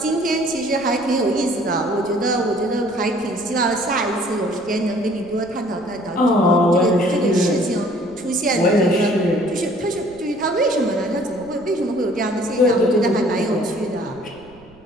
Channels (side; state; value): right; noise; rumble, 26 dB below the sound